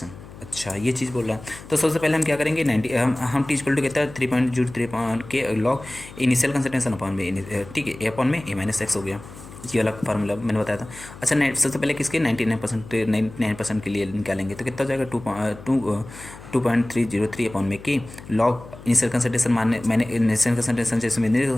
अच्छा ये चीज़ बोल रहा है, तो सबसे पहले हम क्या करेंगे 90 हम टी इक्वल टू कहता है 3.03 के लॉग इनिशियल कंसंट्रेशन अपॉन में, ठीक है, A अपॉन में A - x हो गया। ये वाला फार्मूला मैंने बताया था। अच्छा, सबसे पहले किसके 99% के लिए निकालेंगे तो कितना हो जाएगा 2.303 अपॉन में की लॉग इनिशियल कंसंट्रेशन मैंने इनिशियल कंसंट्रेशन जैसे मैंने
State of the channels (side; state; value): left; noise; hum, 17 dB below the sound